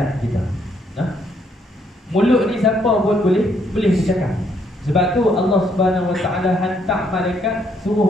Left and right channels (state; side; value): normal; both; correlation 0.71